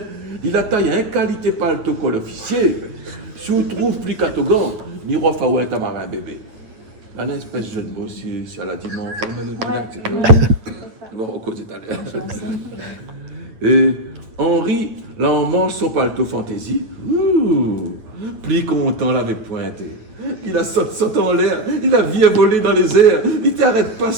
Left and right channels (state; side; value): late; left; 9.0 ms